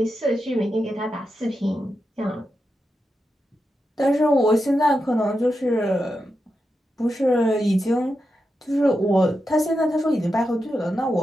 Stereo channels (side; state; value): both; normal; correlation 0.88